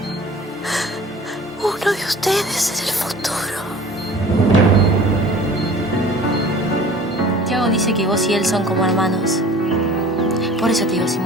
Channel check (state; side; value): normal; both; correlation 0.45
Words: uno de ustedes en el futuro. Tiago dice que vos y él son como hermanos. Por eso te digo,